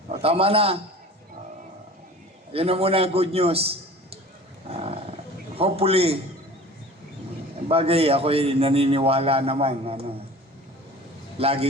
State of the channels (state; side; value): normal; both; correlation 0.41